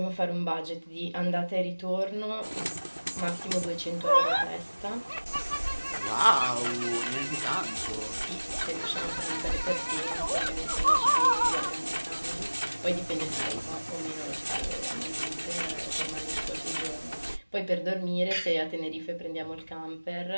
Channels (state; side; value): inverted; both; correlation -1.00